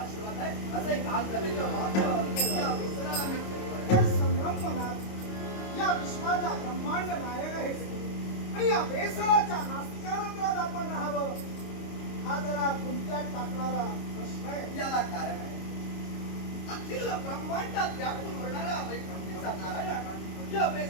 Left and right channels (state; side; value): late; right; 25 ms